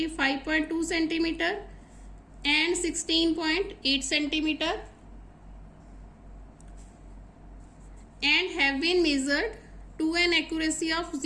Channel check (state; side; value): identical; both; correlation 1.00